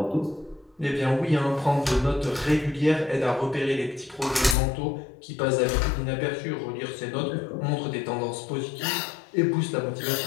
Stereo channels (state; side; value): drops out; right; at 4.5 s